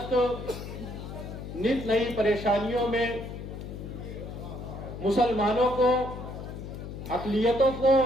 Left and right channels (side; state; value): left; noise; hum, 9 dB below the sound